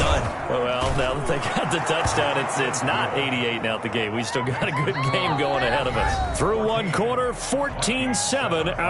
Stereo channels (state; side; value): identical; both; correlation 1.00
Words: done. Well, now that they got the touchdown, it's not 88 and out the gate. We still got a good game going ahead of us. Through one quarter, 14-7